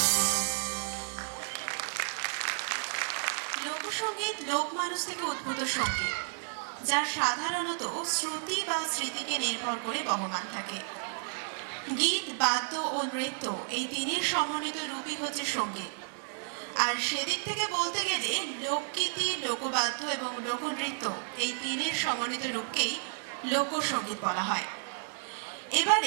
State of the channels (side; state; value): left; silent; digital silence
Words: লোকসঙ্গীত লোক মানুষ থেকে উদ্ভূত সঙ্গীত, যার সাধারণত শ্রুতি বা স্মৃতিকে নির্ভর করে বহমান থাকে। গীত, বাদ্য ও নৃত্য এই তিনের সমন্বিত রূপই হচ্ছে সঙ্গীত। আর সেদিক থেকে বলতে গেলে লোকগীতি, লোকবাদ্য এবং লোকনৃত্য এই তিনের সমন্বিত রূপকেই লোকসঙ্গীত বলা হয়।